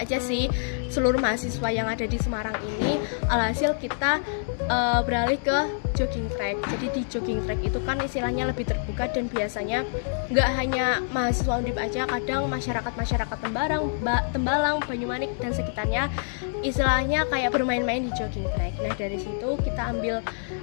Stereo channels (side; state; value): right; silent; digital silence